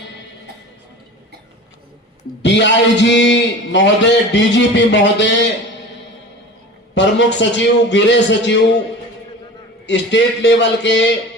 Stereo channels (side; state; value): both; normal; correlation 0.36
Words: डीआईजी महोदय, डीजीपी महोदय, प्रमुख सचिव, गृह सचिव, स्टेट लेवल के,